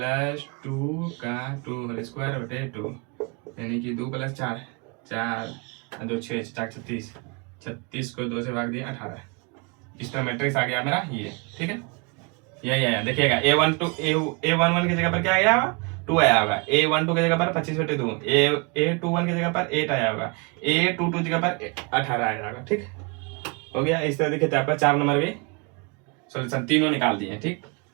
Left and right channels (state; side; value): quieter; left; 30.6 dB